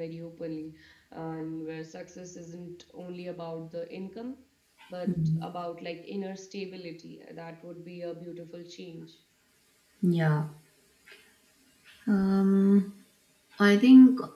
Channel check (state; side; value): identical; both; correlation 1.00